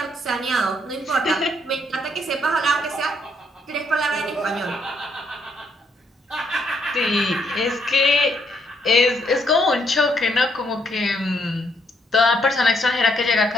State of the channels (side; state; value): both; normal; correlation 0.72